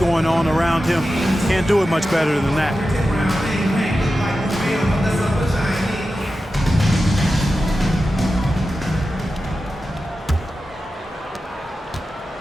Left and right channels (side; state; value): both; normal; correlation 0.92